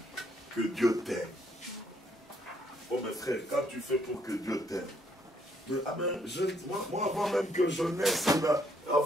que Dieu t'aime. Oh mes frères, quand tu fais pour que Dieu t'aime, moi, avant même que je naisse,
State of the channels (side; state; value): both; normal; correlation 0.70